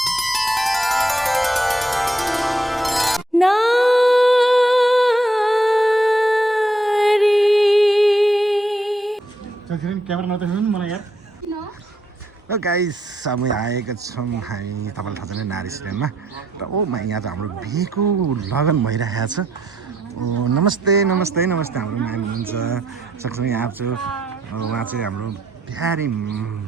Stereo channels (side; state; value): both; normal; correlation 0.74